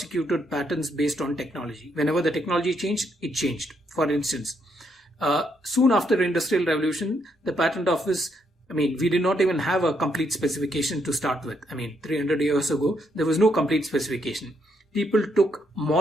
patents based on technology. Whenever the technology changed, it changed. For instance, soon after Industrial Revolution, the Patent Office, we did not even have a complete specification to start with. 300 years ago, there was no complete specification. People took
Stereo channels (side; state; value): both; normal; correlation 0.75